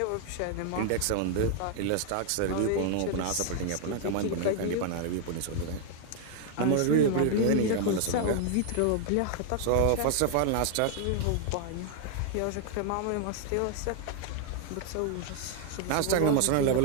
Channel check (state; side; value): different; both; correlation 0.00